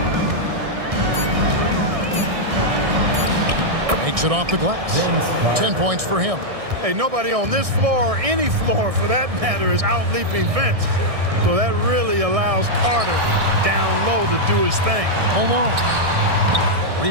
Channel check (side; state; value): left; late; 1.6 ms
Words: Makes it off the glass. 10 points for him. Hey, nobody on this floor or any floor for that matter is out-leaping Vince. So that really allows Carter down low to do his thing. Malone.